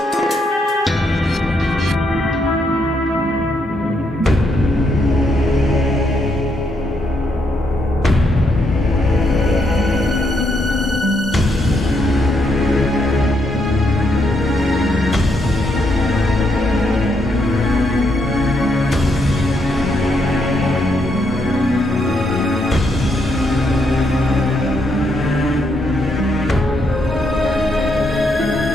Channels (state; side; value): normal; both; correlation 0.77